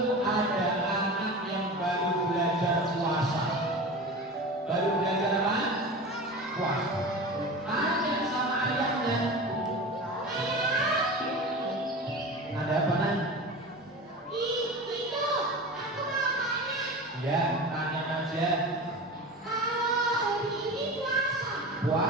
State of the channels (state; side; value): normal; both; correlation 0.31